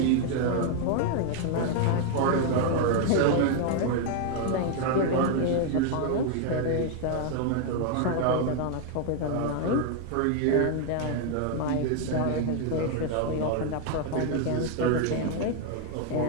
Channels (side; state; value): both; different; correlation 0.00